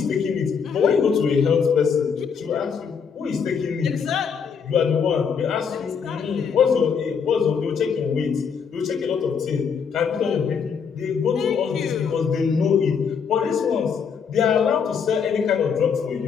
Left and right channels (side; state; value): right; quieter; 6.4 dB